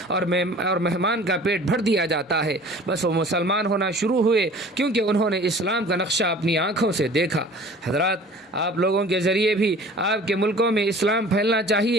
اور مہمان کا پیٹ بھر دیا جاتا ہے۔ بس وہ مسلمان ہونا شروع ہوئے کیونکہ انہوں نے اسلام کا نقشہ اپنی آنکھوں سے دیکھا۔ حضرات، آپ لوگوں کے ذریعے بھی آپ کے ملکوں میں اسلام پھیلنا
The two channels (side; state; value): both; normal; correlation 0.46